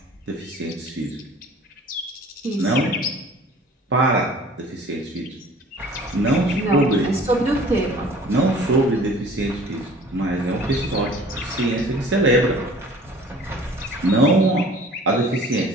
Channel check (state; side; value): normal; both; correlation 0.49